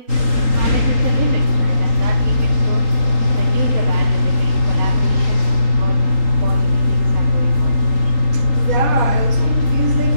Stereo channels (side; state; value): left; late; 3.8 ms